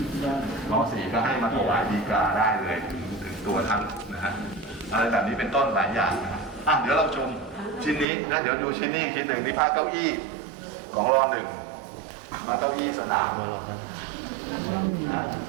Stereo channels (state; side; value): drops out; left; at 8.1 s